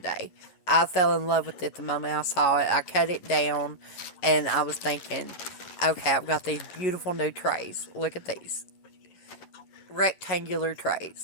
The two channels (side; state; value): right; late; 11 ms